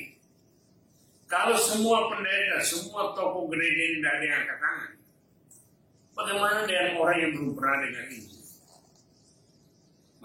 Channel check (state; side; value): identical; both; correlation 1.00